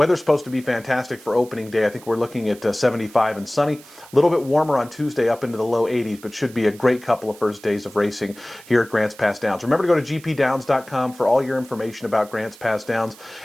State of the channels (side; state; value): right; noise; hiss, 22 dB below the sound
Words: supposed to be fantastic for opening day. I think we're looking at 75 and sunny. A little bit warmer on Tuesday, up into the low 80s, but should be a great couple of first days of racing here at Grants Pass Downs. Remember to go to gpdowns.com for all your information about Grants Pass Downs,